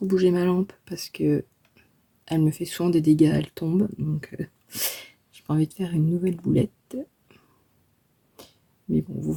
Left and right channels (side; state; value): both; identical; correlation 1.00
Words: bouger ma lampe parce que elle me fait souvent des dégâts, elle tombe. Donc j'ai pas envie de faire une nouvelle boulette. Mais bon, vous